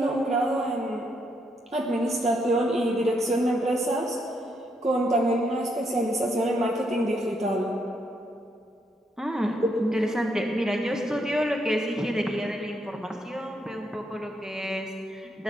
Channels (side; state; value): both; normal; correlation 0.76